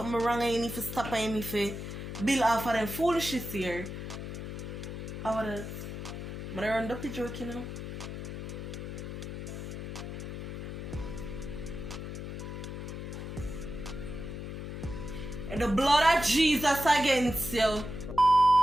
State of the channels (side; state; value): left; noise; hum, 7 dB below the sound